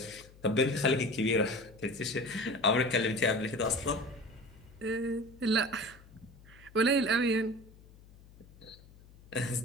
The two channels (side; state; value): left; noise; hum, 23 dB below the sound